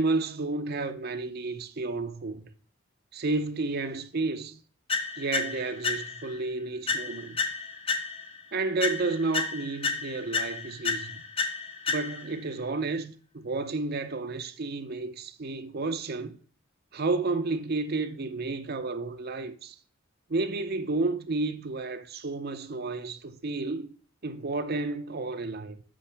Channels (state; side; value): normal; both; correlation 0.13